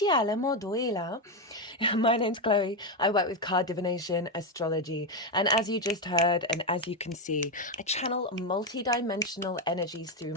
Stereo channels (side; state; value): both; normal; correlation 0.08